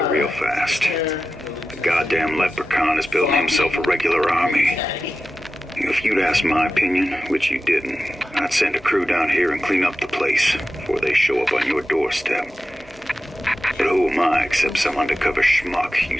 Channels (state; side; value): normal; both; correlation 0.93